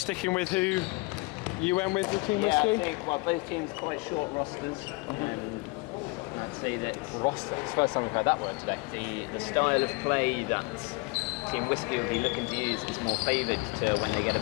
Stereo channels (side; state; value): right; quieter; 26.8 dB